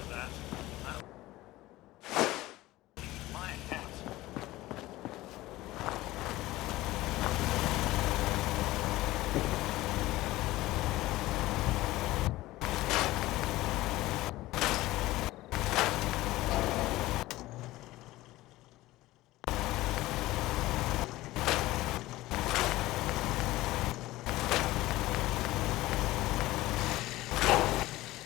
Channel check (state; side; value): quieter; right; 17.7 dB